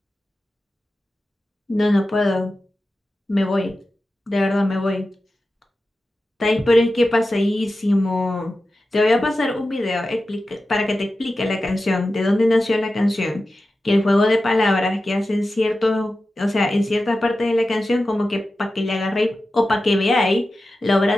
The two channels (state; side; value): normal; both; correlation 0.93